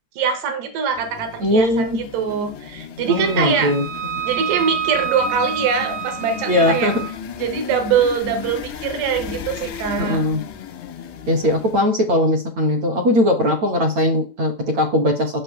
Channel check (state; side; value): late; left; 8.9 ms